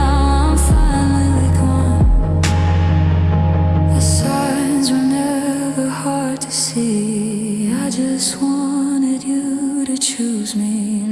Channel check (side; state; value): both; identical; correlation 1.00